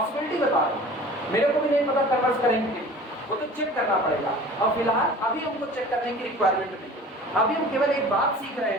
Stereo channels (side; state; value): both; normal; correlation 0.43